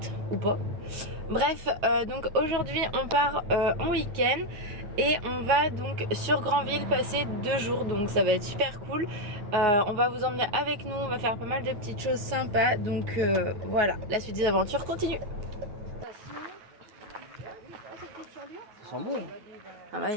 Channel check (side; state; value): left; late; 9.4 ms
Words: ou pas. Bref, donc aujourd'hui on part en week-end et on va donc sur Granville passer 2 jours. Donc ça va être super cool. On va vous emmener avec nous, on va faire pas mal de petites choses sympas. Donc voilà, la suite des aventures continue. Ça sent bon. Ah bah,